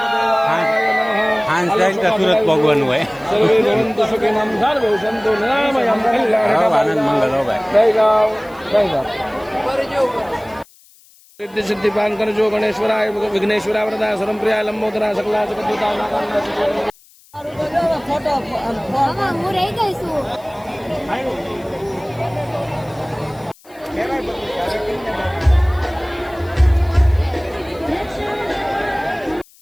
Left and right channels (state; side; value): noise; left; hiss, 28 dB below the sound